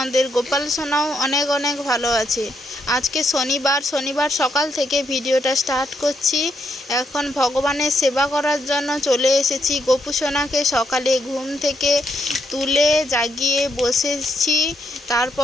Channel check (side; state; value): both; normal; correlation 0.78